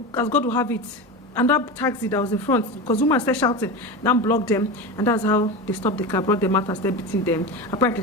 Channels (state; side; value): normal; both; correlation 0.23